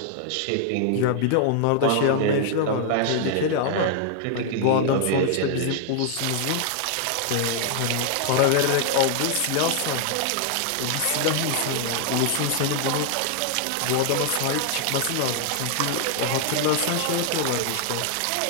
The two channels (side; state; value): both; different; correlation 0.00